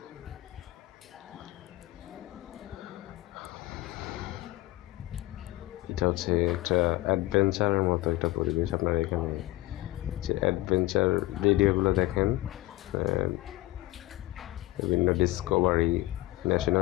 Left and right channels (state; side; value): quieter; right; 17.9 dB